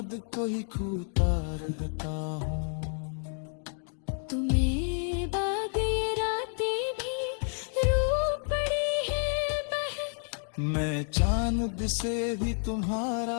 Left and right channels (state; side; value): silent; right; 58 dB below the other